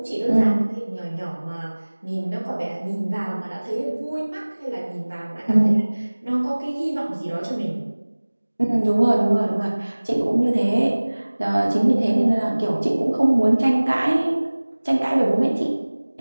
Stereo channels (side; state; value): both; inverted; correlation -1.00